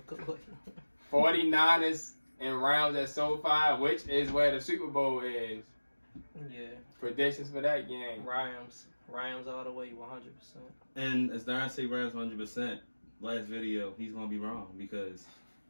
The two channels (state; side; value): inverted; both; correlation -1.00